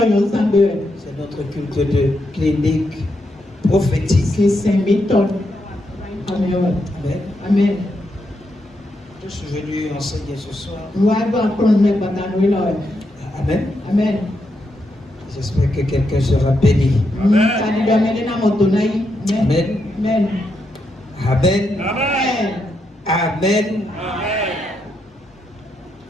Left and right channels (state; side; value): normal; both; correlation 0.82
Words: notre culte de clinique prophétique. Amen. Je suis venu enseigner ce soir. Amen. J'espère que quelqu'un sera béni. Amen.